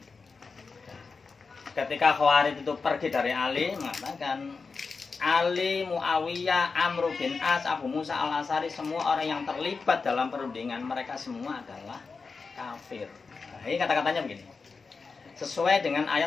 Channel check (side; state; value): right; quieter; 4.6 dB